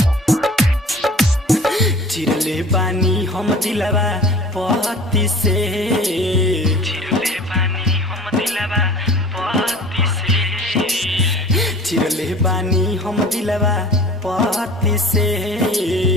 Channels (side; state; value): both; normal; correlation 0.44